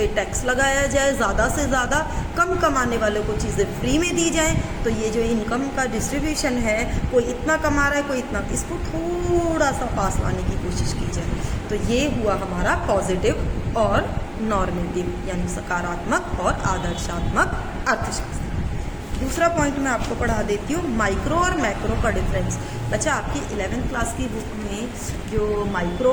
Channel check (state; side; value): identical; both; correlation 1.00